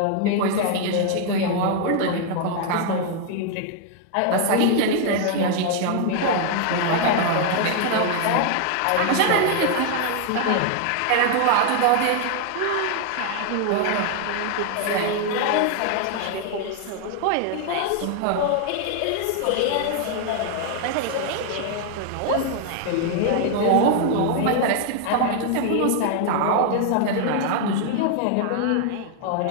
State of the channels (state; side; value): different; both; correlation 0.00